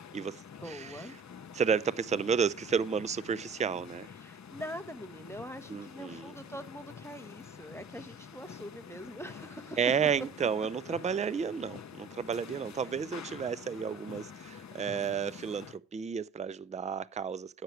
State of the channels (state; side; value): quieter; left; 5.6 dB